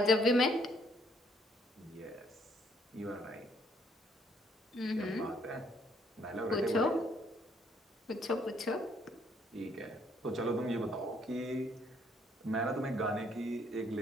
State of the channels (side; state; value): both; normal; correlation 0.67